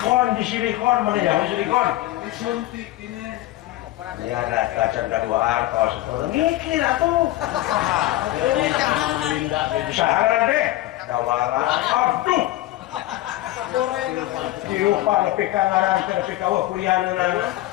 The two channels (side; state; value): right; quieter; 16.2 dB